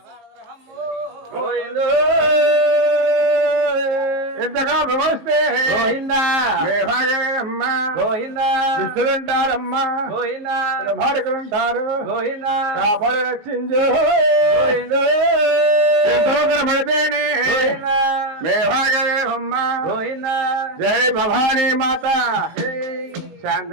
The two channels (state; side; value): late; left; 19 ms